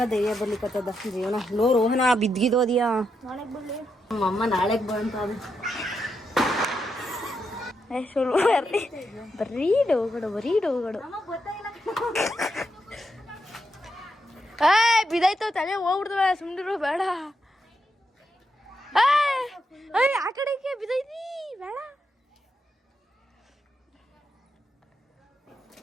ಧೈರ್ಯ ಬರ್ಲಿಕ್ಕತ್ತದ ಜೀವನ. ಲೋ ರೋಹನ ಬಿದ್ಗಿದೋದಿಯಾ? ನಮ್ಮಮ್ಮ ನಾಳೆಗ್ ಬಂತ. ಬರೀ ಡೋಗಡು. ಬಿದಾಯ್ತವ ತಲೆ ಹೋಗ್ಬಿಡ್ತವ, ಸುಮ್ನಿರು ಬೇಡ. ಆ ಕಡೆಗೆ ಬಿದೈತಿ ಬೇಡ.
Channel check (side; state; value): both; normal; correlation 0.83